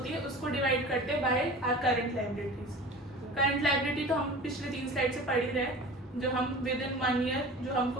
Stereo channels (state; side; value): normal; both; correlation 0.38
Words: है उसको डिवाइड करते हैं by our current liabilities. Current liability तो हम पिछले 3 स्लाइड से पढ़ ही रहे हैं, जो हम विद इन 1 ईयर जो